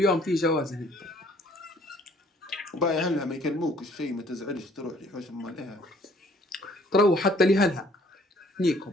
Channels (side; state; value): both; normal; correlation 0.59